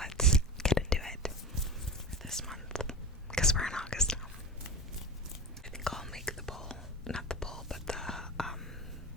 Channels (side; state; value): both; normal; correlation 0.31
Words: get into it for this month, because we're in August now. I think I'll make the poll, not the poll, but the